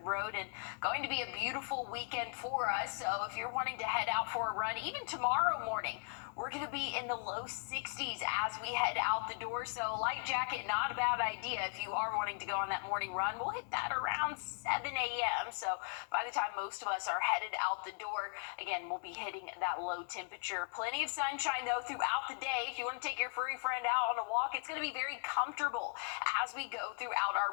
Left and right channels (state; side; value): silent; right; 53 dB below the other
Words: Road, and going to be a beautiful weekend for us. So if you're wanting to head out for a run, even tomorrow morning, we're going to be in the low 60s as we head out the door. So light jacket, not a bad idea if you are wanting to go on that morning run. We'll hit that around 7 a.m. So by the time most of us are headed out the door, again, we'll be hitting that low temperature. Plenty of sunshine, though, throughout the day. If you want to take your furry friend out on a walk, it's going to be very comfortable as we go throughout